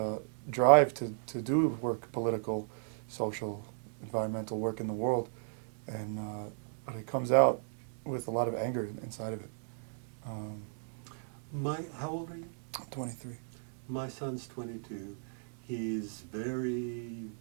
drive to do work, political, social, environmental work in the world, and but it comes out with a lot of anger inside of it. How old are you? 23. My son's 22. He's very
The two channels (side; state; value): left; silent; digital silence